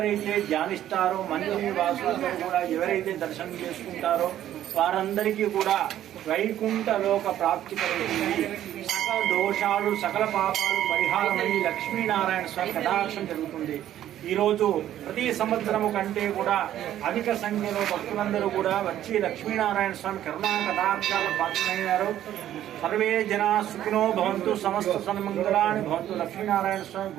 ధ్యానిస్తారో మందిర వాసులందరూ కూడా ఎవరైతే దర్శనం చేసుకుంటారో వారందరికీ కూడా వైకుంఠ లోక ప్రాప్తి కలుగుతుంది। సకల దోషాలు సకల పాపాలు పరిహారమై లక్ష్మీనారాయణ స్వామి కటాక్షం జరుగుతుంది। ఈరోజు ప్రతి సంవత్సరము కంటే కూడా అధిక సంఖ్యలో భక్తులందరూ కూడా వచ్చి లక్ష్మీనారాయణ స్వామి కరుణా కటాక్షాలు పాత్రమయ్యారు। సర్వే జనా సుఖినో భవంతు, సమస్త సన్మంగళాని భవంతు। లక్ష్మీనారాయణ స్వామి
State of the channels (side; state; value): left; quieter; 12.0 dB